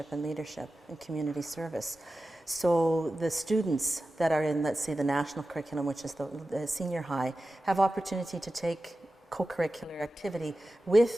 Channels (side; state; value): both; normal; correlation 0.94